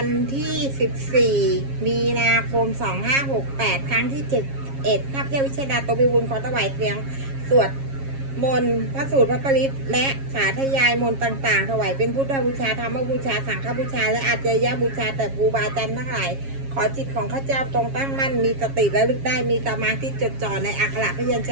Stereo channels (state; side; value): late; left; 7.3 ms